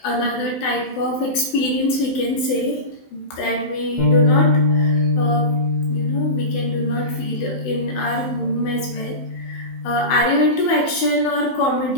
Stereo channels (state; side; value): late; right; 16 ms